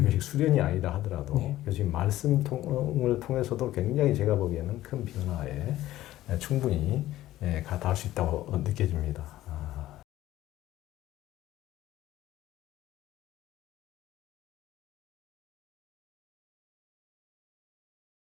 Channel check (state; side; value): quieter; right; 14.8 dB